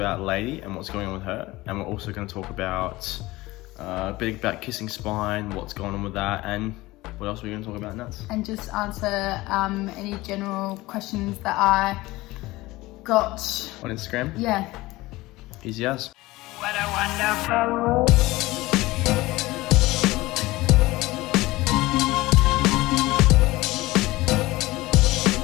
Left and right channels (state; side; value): quieter; right; 19.5 dB